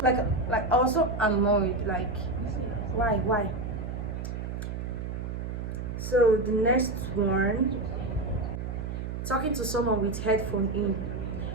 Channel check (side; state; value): right; noise; hum, 5 dB below the sound